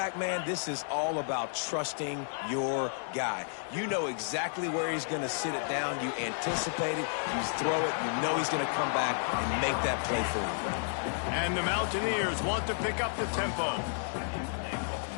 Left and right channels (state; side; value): silent; right; digital silence